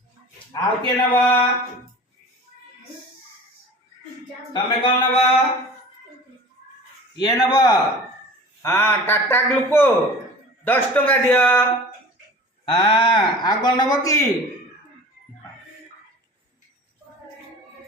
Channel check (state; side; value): normal; both; correlation 0.40